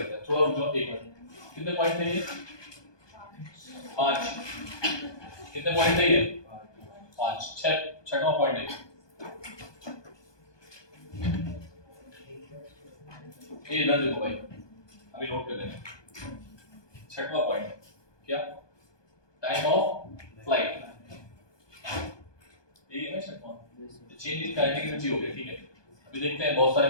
हैं, थोड़ा रुक जाओ एक मिनट। कितने पॉइंट थे ये? 5। कितने पॉइंट थे ये? 5। 6वां पॉइंट है ये, इधर देखो भाई, अभी नोट कर लेना। 6वां पॉइंट क्या? Time of flight. ये है ना 6वां, चेंज इन काइनेटिक एनर्जी हो गया, ठीक है। अभी देखते हैं, बहुत सारे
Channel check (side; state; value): right; late; 1.2 ms